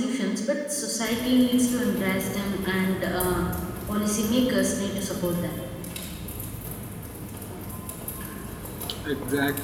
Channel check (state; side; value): identical; both; correlation 1.00